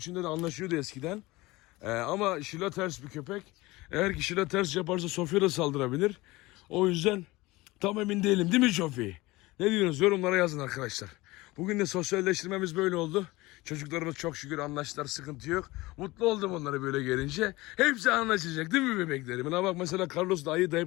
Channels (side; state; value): right; quieter; 20.7 dB